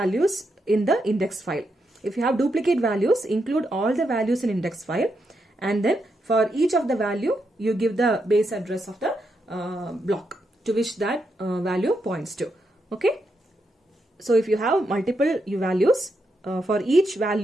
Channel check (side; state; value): both; normal; correlation 0.82